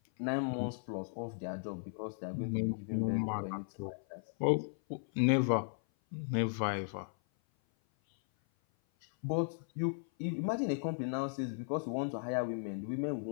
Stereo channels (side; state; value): right; silent; 54 dB below the other